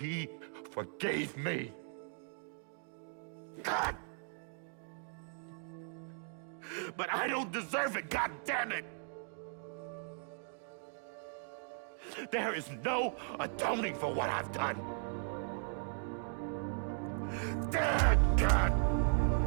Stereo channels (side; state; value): left; silent; 53 dB below the other